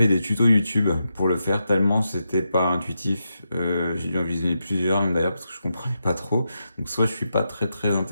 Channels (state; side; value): inverted; both; correlation -0.87